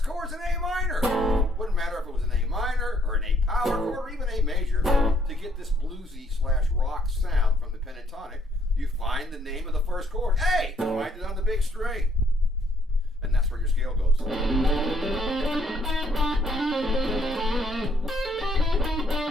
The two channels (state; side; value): normal; both; correlation 0.68